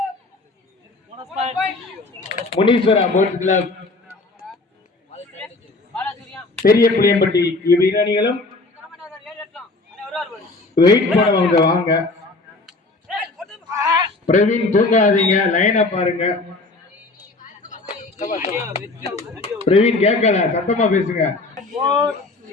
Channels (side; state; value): right; quieter; 3.3 dB